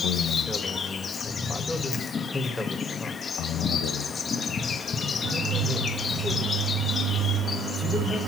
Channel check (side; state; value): both; normal; correlation 0.63